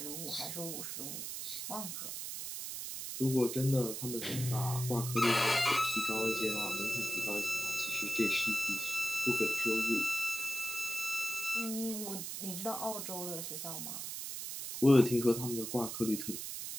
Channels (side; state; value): right; noise; hiss, 6 dB below the sound